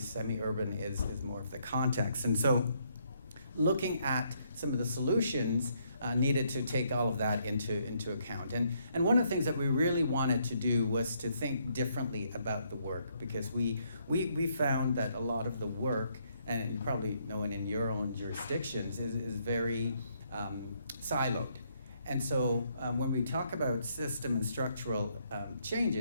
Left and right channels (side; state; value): both; inverted; correlation -0.71